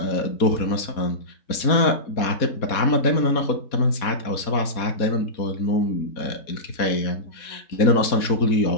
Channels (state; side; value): late; right; 4.2 ms